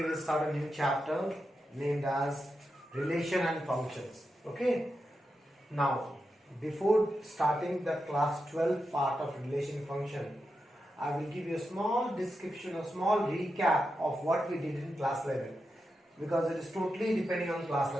will start a new chapter named as Relation and Functions. Okay. Now, before starting the class 12 part of relation function, I will give you a small description, a small recap of what we did in class 11 because it is totally depending on class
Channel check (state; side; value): normal; both; correlation 0.88